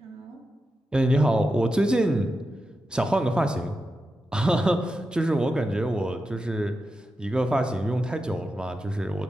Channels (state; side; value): normal; both; correlation 0.89